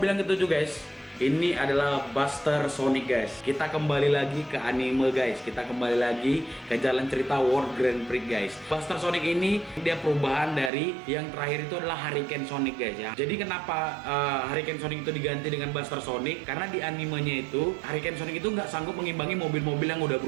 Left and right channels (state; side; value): drops out; left; at 10.7 s